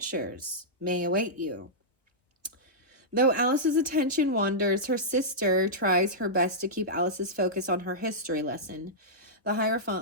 may await you? Though Alice's attention wanders, her sister tries her best to keep Alice's focus on her history lesson. The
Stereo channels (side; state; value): both; normal; correlation -0.12